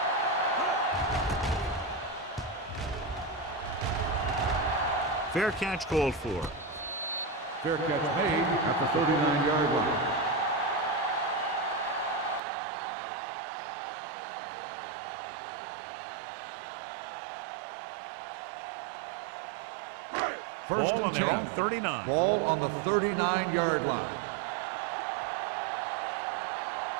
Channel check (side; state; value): left; drops out; at 12.4 s